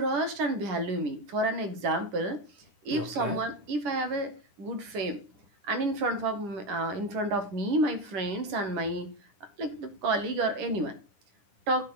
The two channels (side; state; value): left; late; 10 ms